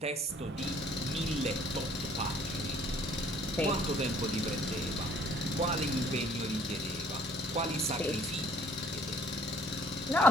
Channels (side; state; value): both; normal; correlation 0.58